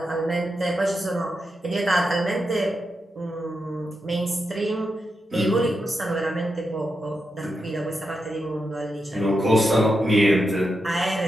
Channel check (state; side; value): normal; both; correlation 0.86